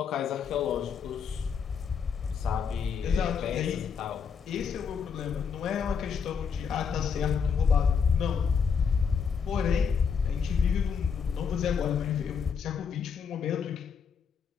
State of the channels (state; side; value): quieter; right; 6.4 dB